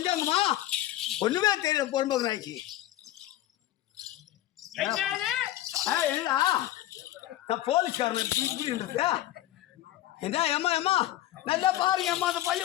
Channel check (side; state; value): right; quieter; 14.3 dB